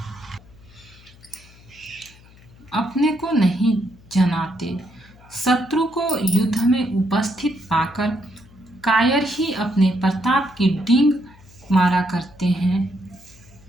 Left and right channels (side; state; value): left; noise; hum, 24 dB below the sound